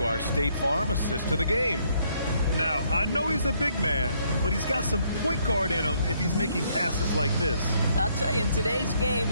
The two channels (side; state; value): both; inverted; correlation -0.69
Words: our State Farm assist to the game. Now, I know he's a big man, but he's got some point guard in him if he's making passes like this. I'll tell you, in today's game,